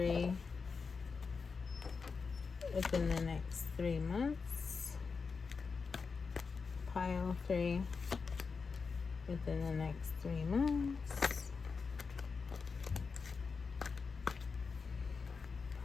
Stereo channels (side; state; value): right; quieter; 5.0 dB